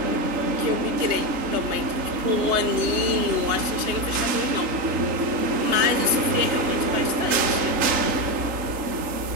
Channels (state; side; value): late; left; 3.8 ms